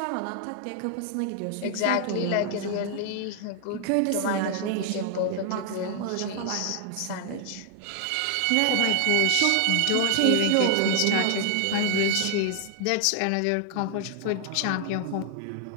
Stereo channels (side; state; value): both; different; correlation 0.00